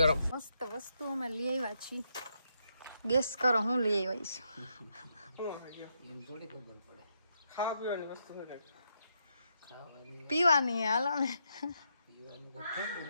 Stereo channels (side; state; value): both; inverted; correlation -0.79